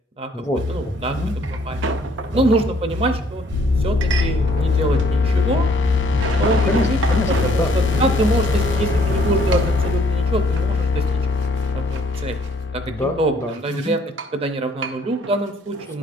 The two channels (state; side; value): normal; both; correlation 0.63